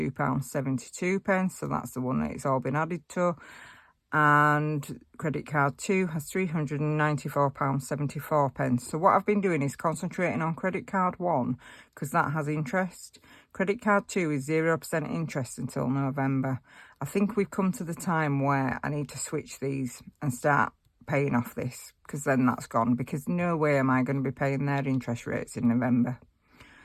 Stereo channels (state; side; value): identical; both; correlation 1.00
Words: So that's the one that it's all been added to. And credit card 2 has £394.74. So what I've been doing is concentrating on credit card 1 because that has interest. Credit card 2 is 0% interest until November. I think we've come to the time where I need to switch these and start paying off this, because then that's gone, because no way am I going to be paying their interest rates in November.